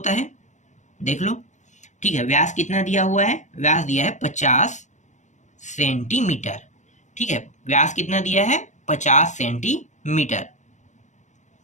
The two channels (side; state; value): right; late; 0.35 ms